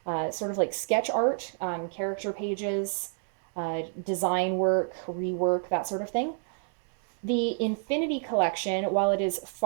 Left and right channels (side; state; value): left; silent; 58 dB below the other